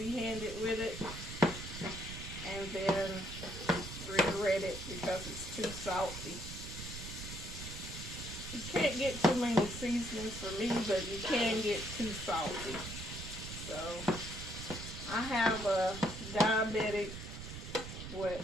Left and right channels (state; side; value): noise; right; rumble, 9 dB below the sound